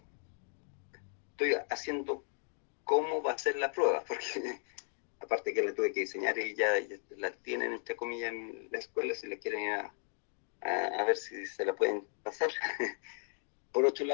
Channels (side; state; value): right; silent; 54 dB below the other